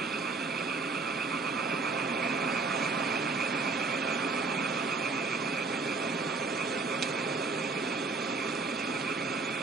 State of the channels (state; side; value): quieter; left; 4.0 dB